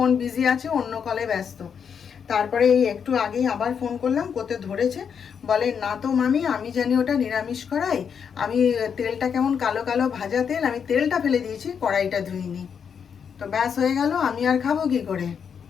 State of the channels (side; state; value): right; quieter; 7.1 dB